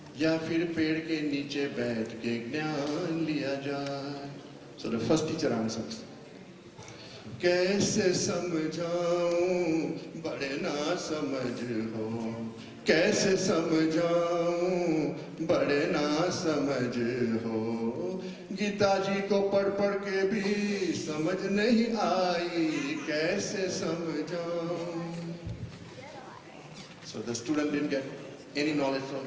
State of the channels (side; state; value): both; identical; correlation 1.00